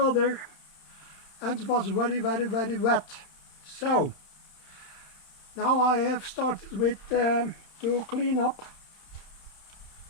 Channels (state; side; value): late; right; 31 ms